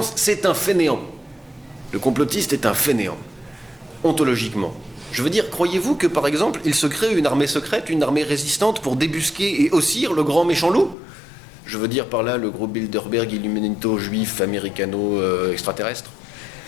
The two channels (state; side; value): drops out; right; at 11.0 s